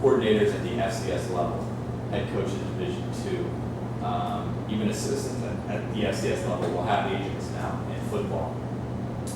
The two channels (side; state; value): both; identical; correlation 1.00